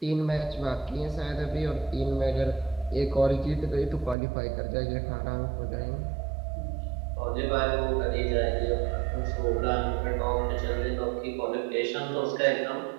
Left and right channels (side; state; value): left; drops out; at 4.2 s